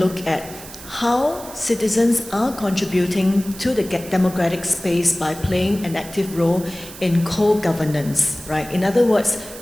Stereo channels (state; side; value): noise; right; hiss, 15 dB below the sound